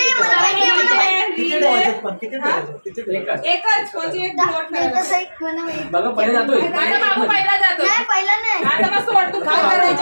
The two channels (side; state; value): both; inverted; correlation -1.00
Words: एकच म्हणजे एक फ्लोट करायला. बघा पहिले जातोय. आता बाबू पहिला जातो. आता मग सोड तू